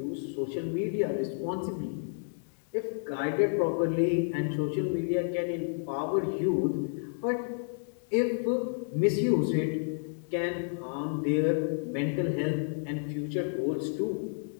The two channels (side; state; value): right; silent; digital silence